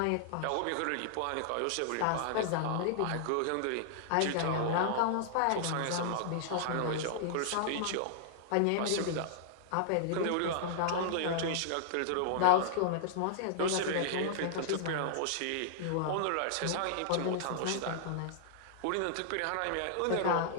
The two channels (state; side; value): different; both; correlation -0.01